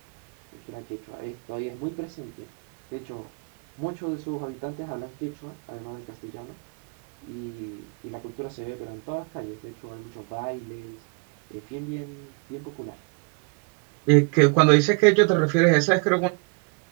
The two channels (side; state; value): left; quieter; 36.5 dB